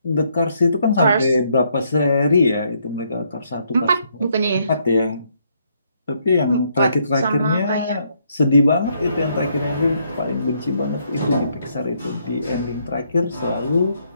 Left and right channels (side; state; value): both; inverted; correlation -0.72